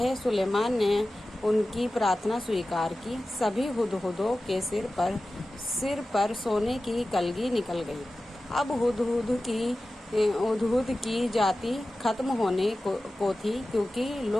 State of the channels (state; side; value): normal; both; correlation 0.95